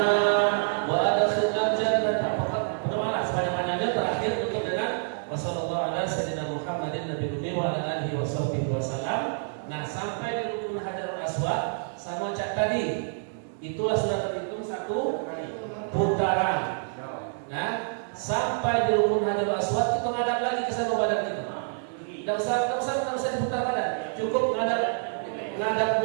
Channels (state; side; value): silent; left; digital silence